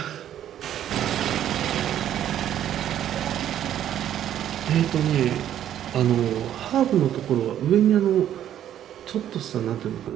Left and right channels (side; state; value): left; quieter; 10.9 dB